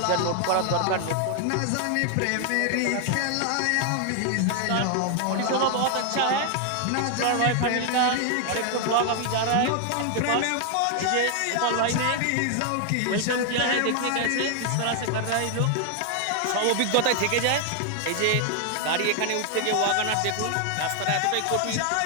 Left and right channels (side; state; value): both; different; correlation 0.00